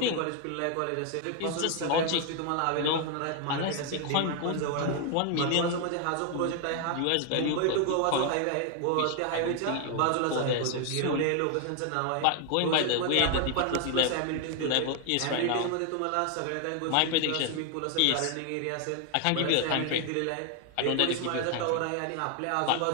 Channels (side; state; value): both; different; correlation 0.01